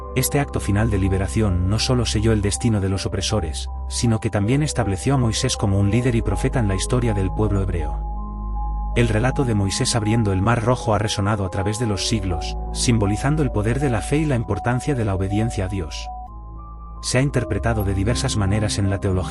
Este acto final de liberación no solo selló el destino de los opresores, sino que también estableció a Moisés como un líder y profeta en la historia del pueblo hebreo. El relato de Moisés abriendo el Mar Rojo ha resonado a través de los siglos, simbolizando el poder de la fe y la importancia de la obediencia a Dios. Se ha interpretado de diversas maneras en la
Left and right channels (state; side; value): identical; both; correlation 1.00